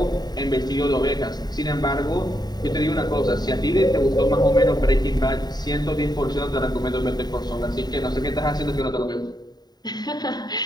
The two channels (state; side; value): late; right; 0.20 ms